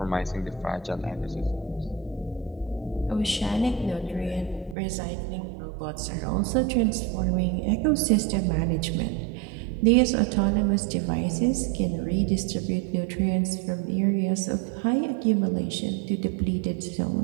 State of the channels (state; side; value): drops out; left; at 4.8 s